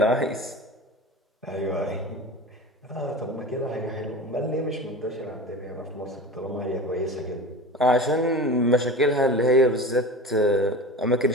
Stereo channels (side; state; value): both; normal; correlation 0.32